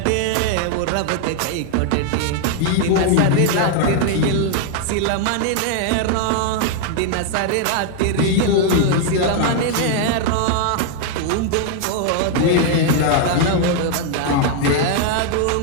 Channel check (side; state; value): both; different; correlation 0.00